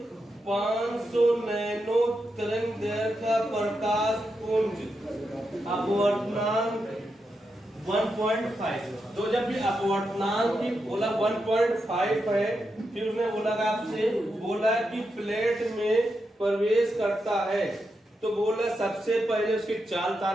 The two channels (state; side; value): normal; both; correlation 0.86